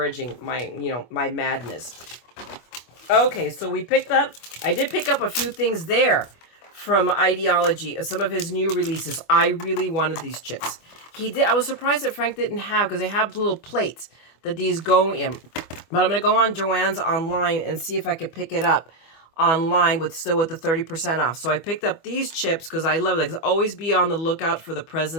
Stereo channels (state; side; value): late; right; 25 ms